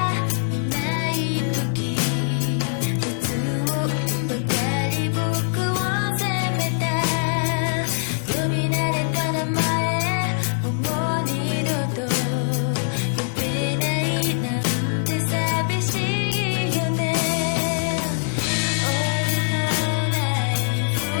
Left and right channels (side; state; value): right; silent; digital silence